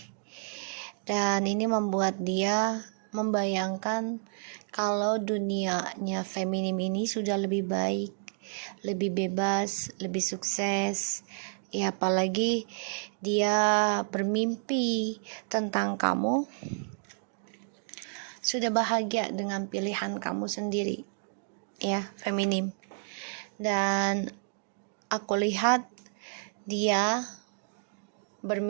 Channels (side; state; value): left; silent; 58 dB below the other